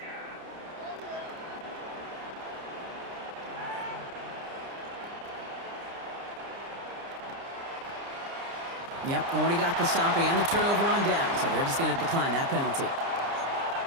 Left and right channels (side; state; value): left; late; 30 ms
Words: Yep, already got the stop and the turnover on down, so they're just going to decline that penalty.